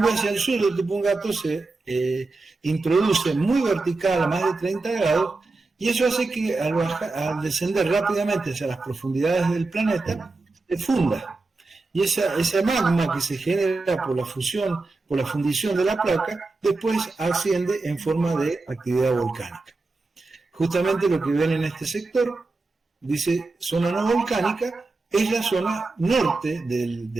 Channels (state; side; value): quieter; left; 3.5 dB